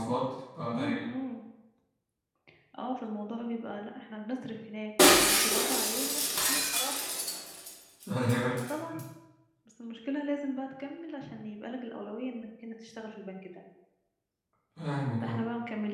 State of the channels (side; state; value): both; identical; correlation 1.00